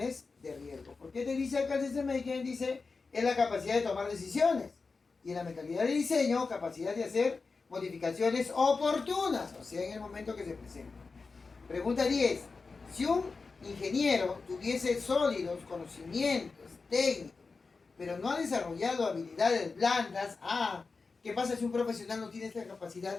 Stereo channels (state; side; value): quieter; right; 4.3 dB